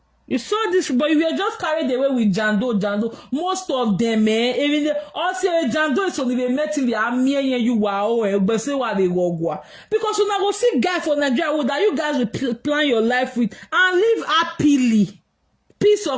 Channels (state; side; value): identical; both; correlation 1.00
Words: You saw this, but you were just carried away with Jando. Most of them, even also Jando is only met in the army and you wow, but say what they go. Because when I go see guy for Nigeria, that you guys will plan your life with and live happily. Peace